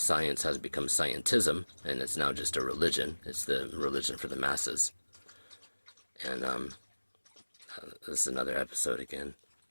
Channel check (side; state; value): both; inverted; correlation -1.00